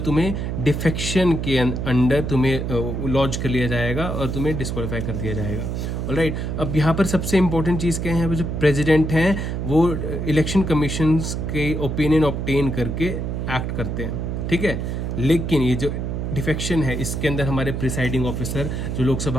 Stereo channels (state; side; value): noise; right; hum, 2 dB below the sound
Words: डिफेक्शन के अंडर तुम्हें लॉन्च कर लिया जाएगा और तुम्हें डिस्क्वालीफाई कर दिया जाएगा, ऑलराइट। अब यहाँ पर सबसे इंपॉर्टेंट चीज़ क्या है, यहाँ पर जो प्रेसिडेंट हैं वो इलेक्शन कमीशन के ओपिनियन ऑब्टेन करके एक्ट करते हैं, ठीक है। लेकिन ये जो डिफेक्शन है, इसके अंदर हमारे प्रिसाइडिंग ऑफिसर जो